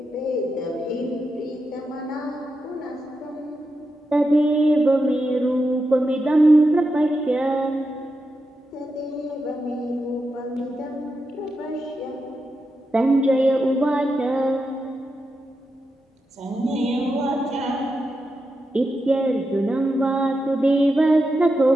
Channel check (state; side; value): normal; both; correlation 0.87